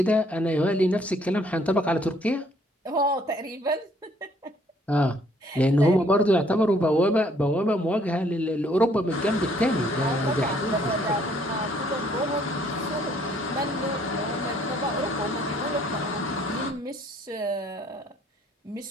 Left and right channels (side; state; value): both; normal; correlation 0.64